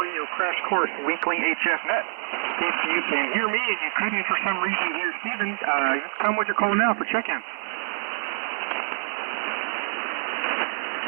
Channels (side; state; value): left; silent; digital silence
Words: Radio Crash Course Weekly HF Net. If you can hear me and you couldn't for some reason hear Steven, come with your call now for check-in.